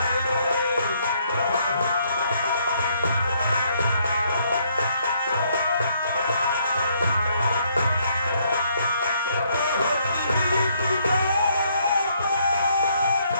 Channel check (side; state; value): both; inverted; correlation -0.69